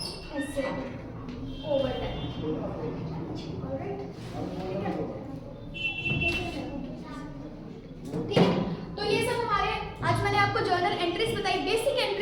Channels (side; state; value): both; identical; correlation 1.00